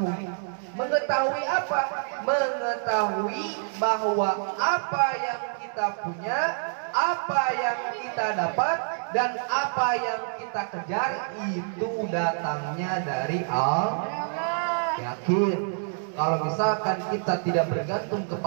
Mengetahui apa? Mengetahui bahwa apa yang kita punya, apa yang kita dapat, dan apa yang kita kejar itu datangnya dari Allah. Yakin. Kalau misalkan kita tidak bergantung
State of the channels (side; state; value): left; silent; digital silence